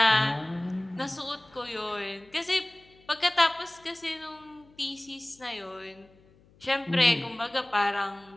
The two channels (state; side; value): noise; left; hum, 29 dB below the sound